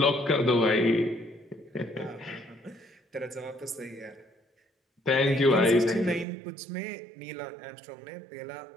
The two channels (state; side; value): drops out; left; at 6.2 s